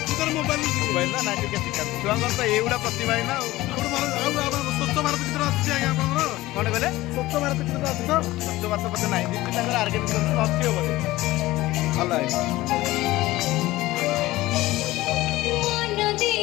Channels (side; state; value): right; quieter; 17.8 dB